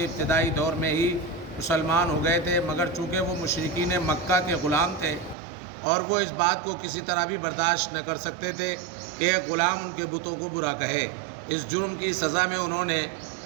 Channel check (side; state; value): left; drops out; at 5.4 s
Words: ابتدائی دور میں ہی مسلمان ہو گئے تھے، مگر چونکہ وہ مشرکین مکہ کے غلام تھے اور وہ اس بات کو کسی طرح بھی برداشت نہ کر سکتے تھے کہ ایک غلام ان کے بتوں کو برا کہے۔ اس جرم کی سزا میں انہوں نے